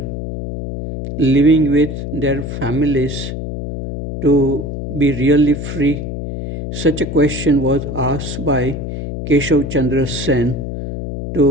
living with their families to be really free? Such a question was asked by Keshav Chandra Sen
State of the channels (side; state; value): left; noise; hum, 6 dB below the sound